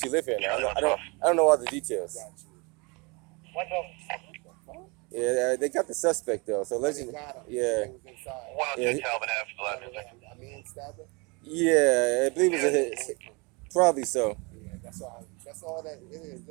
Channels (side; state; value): left; quieter; 29.0 dB